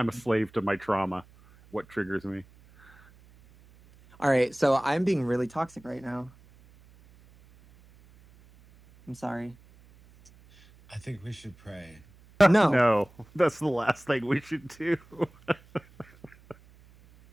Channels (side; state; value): right; noise; hum, 26 dB below the sound